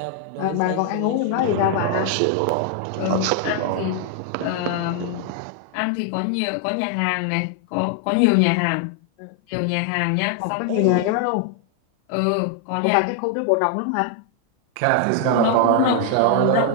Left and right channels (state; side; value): different; both; correlation 0.00